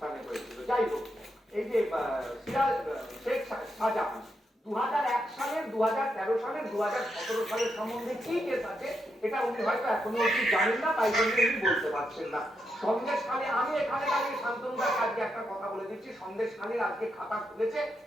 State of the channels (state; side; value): normal; both; correlation 0.83